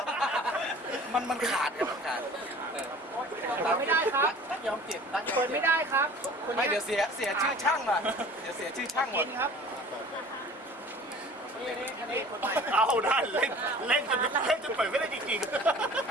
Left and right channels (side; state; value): both; normal; correlation 0.45